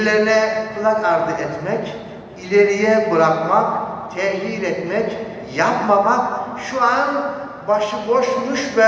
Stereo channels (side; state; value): both; identical; correlation 1.00